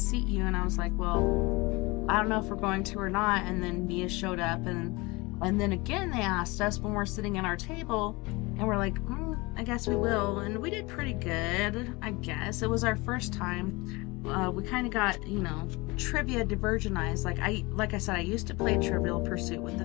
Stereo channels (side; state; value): right; quieter; 24.1 dB